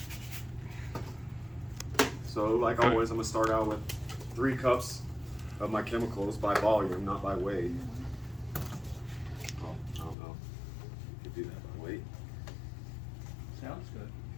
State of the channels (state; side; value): drops out; right; at 10.2 s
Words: So like always, I'm gonna start out with 3 cups of my chemicals by volume, not by weight. Oh, I don't know. You could do that by weight. Sounds good.